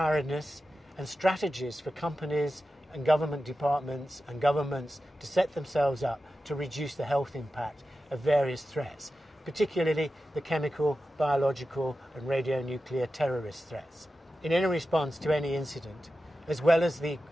and strategies for companies and government departments and governments to set themselves up to reduce the health impact of various threats, particularly the chemical, biological and radionuclear terrorist threats. In any response to any incident, as well as the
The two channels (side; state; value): both; normal; correlation 0.92